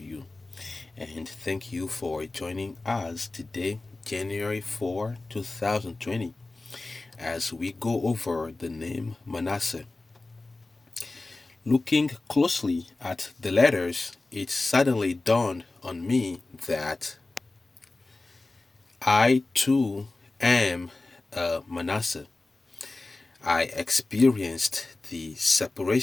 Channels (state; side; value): quieter; right; 3.2 dB